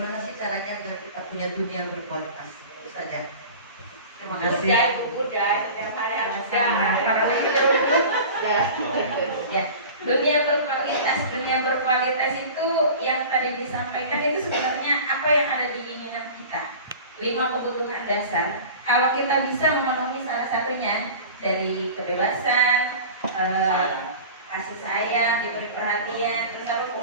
sih caranya agar kita punya dunia berkualitas? Itu saja. Terima kasih. Udah, setiap hari harus ya. Dunia berkualitas itu yang tadi disampaikan itu sebenarnya apa yang ada di keinginan kita. 5 kebutuhan dasar. Kalau kita bisa memenuhi salah satunya dari kebebasan, kasih sayang, diberi perhatian, terus apa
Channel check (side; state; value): both; inverted; correlation -0.38